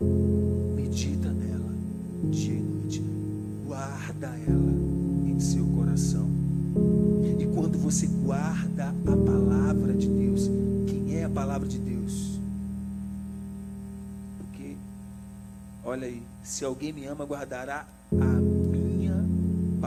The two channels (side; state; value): both; identical; correlation 1.00